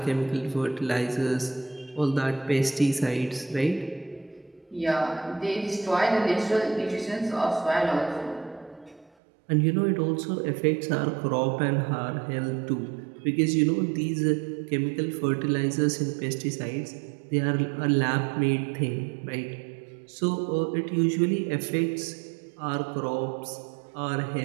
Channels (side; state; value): left; drops out; at 9.1 s